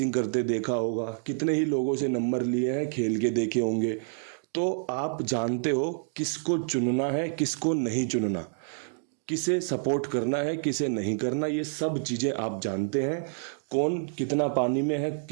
करते देखा होगा, कितने ही लोगों से नंबर लिए हैं, खेल के देखे होंगे। तो आप जानते हो किसको चुनना है, किसको नहीं चुनना, किसे सपोर्ट करना है, किसे नहीं करना। ये सब चीज़ें आप जानते हैं। कौन कितना पानी में है,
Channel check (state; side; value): silent; left; digital silence